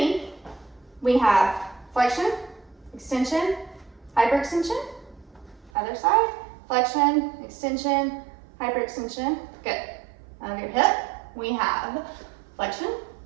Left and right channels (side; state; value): left; drops out; at 5.7 s